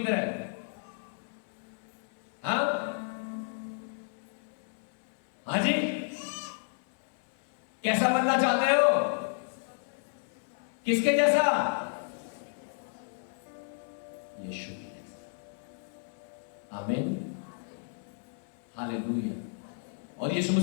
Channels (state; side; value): silent; right; 56 dB below the other